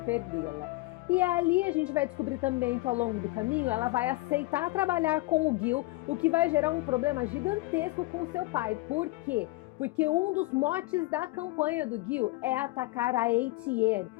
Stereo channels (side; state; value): right; quieter; 20.8 dB